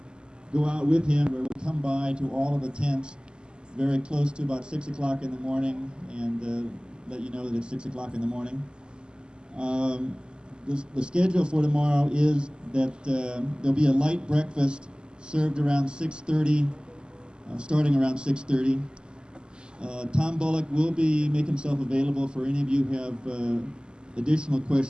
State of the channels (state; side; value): late; left; 0.048 ms